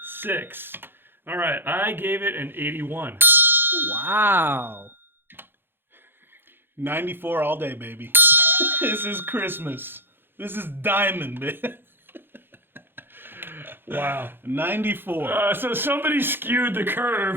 All right, I gave it an 81. Wow. 94 all day, baby. This is Christmas. This is diamond, man. Wow. 94. So somebody skewed the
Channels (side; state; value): left; late; 0.10 ms